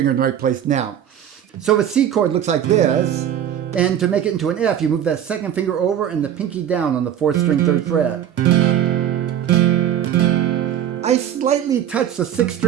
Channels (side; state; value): left; quieter; 10.1 dB